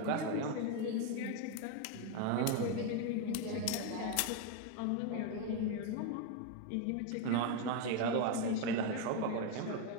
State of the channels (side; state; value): both; different; correlation 0.01